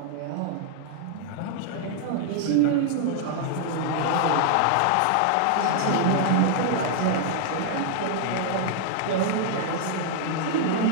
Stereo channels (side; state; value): both; different; correlation -0.01